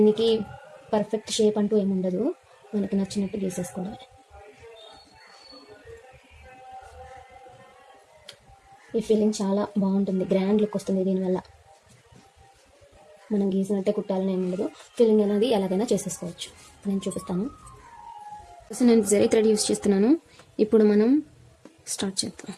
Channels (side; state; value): both; identical; correlation 1.00